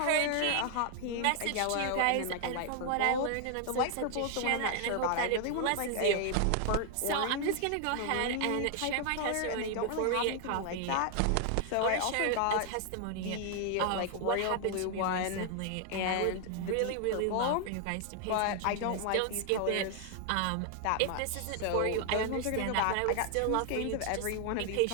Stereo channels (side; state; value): both; different; correlation 0.00